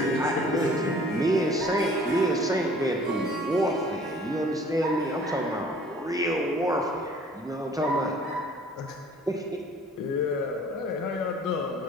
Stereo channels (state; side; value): normal; both; correlation 0.52